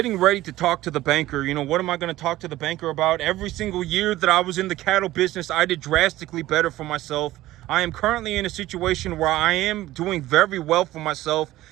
ready to talk to the banker. What am I going to talk to the banker about? Every single year that I was in the cattle business, I did drastically better for myself. I am currently in a situation where I am doing very well for myself.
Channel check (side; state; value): left; quieter; 16.0 dB